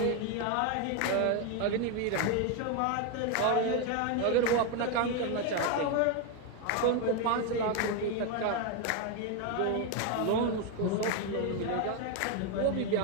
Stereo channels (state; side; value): different; both; correlation 0.01